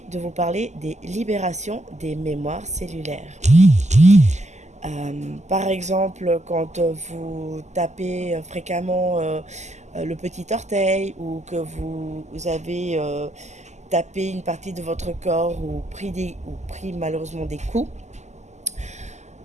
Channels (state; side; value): late; left; 0.33 ms